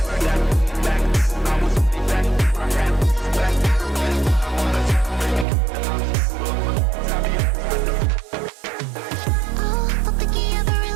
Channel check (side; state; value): left; drops out; at 5.5 s